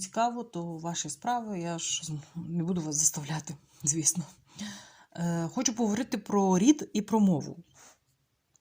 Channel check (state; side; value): identical; both; correlation 1.00